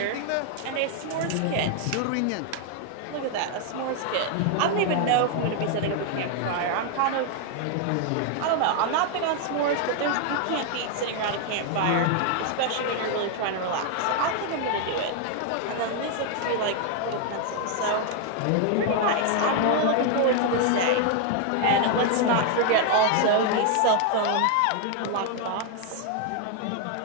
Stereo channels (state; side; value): different; both; correlation 0.00